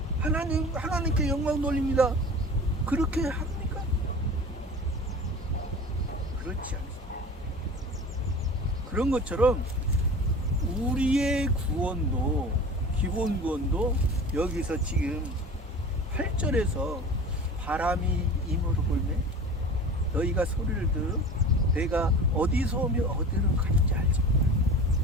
하나님께 영광 돌립니다. 그렇게 합니까? 그렇지 않습니다. 그런 것처럼 우리의 구원도, 기본 구원도 여기서 지금 8절에서 바람이 임으로 불매 너희가 소리를 들어 내가 어디서 오며 어디로 가는지 알지 못하라.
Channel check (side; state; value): both; normal; correlation 0.37